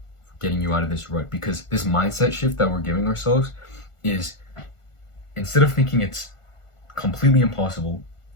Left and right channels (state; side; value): late; right; 1.4 ms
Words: for getting you out of this rut, because this mindset shift that we're giving ourselves is, instead of thinking it's completely impossible